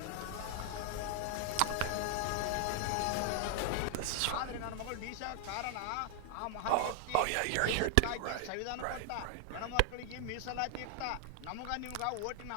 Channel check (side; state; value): both; different; correlation 0.00